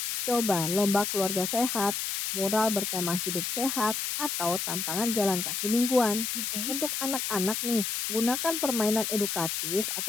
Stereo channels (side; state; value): left; noise; hiss, 2 dB below the sound